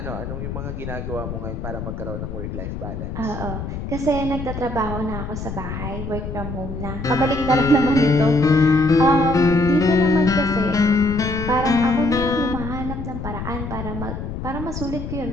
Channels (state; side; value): noise; left; rumble, 6 dB below the sound